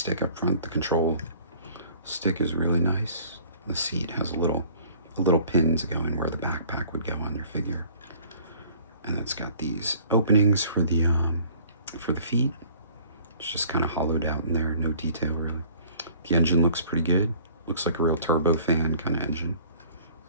up front, the control stick, is really nice. The seat has a little a little pin to go in where the backpack would go on your figure. And it's got these openings for the feet. It's just kind of hollowed out in there, no detail really. The engine looks pretty good. Looks like a real turbo fan kind of engine.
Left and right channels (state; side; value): inverted; both; correlation -0.53